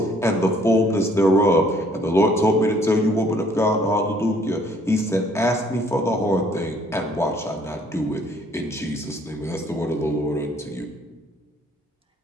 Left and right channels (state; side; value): normal; both; correlation 0.61